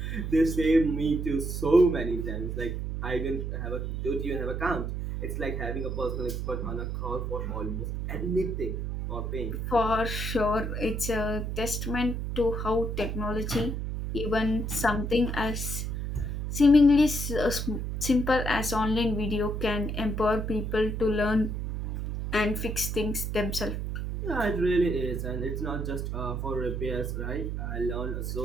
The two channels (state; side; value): noise; right; hum, 3 dB below the sound